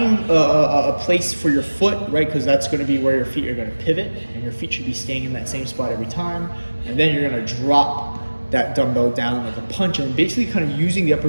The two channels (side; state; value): both; inverted; correlation -1.00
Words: a place for your foot, right? Because that's gonna be where your feet are gonna pivot, and your feet should be staying in that same spot every time. And then you're gonna drop that dumbbell down like a punch, and basically kind of using the upper